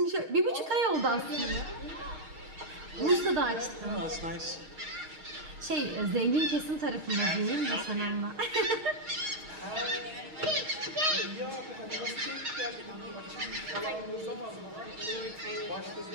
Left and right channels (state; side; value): late; left; 6.4 ms